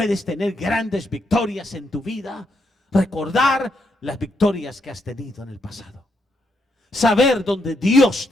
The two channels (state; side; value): normal; both; correlation 0.79